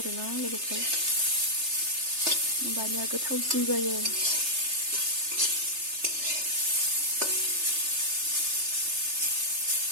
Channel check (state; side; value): late; left; 3.3 ms